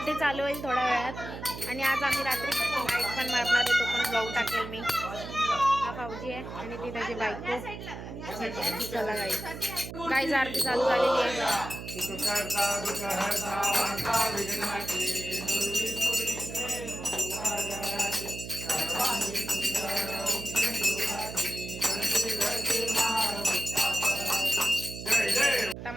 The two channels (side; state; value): right; noise; hum, 10 dB below the sound